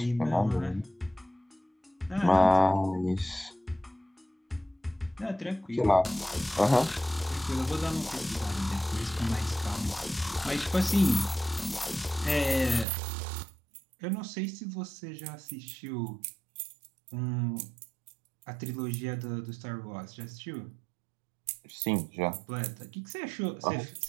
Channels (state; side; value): drops out; left; at 12.9 s